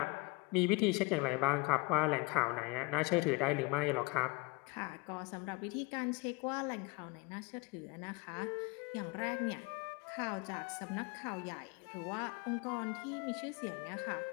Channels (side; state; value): right; quieter; 26.0 dB